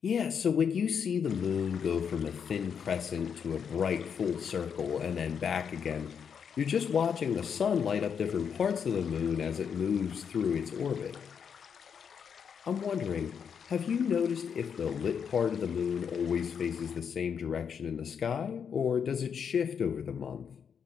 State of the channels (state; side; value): quieter; right; 7.1 dB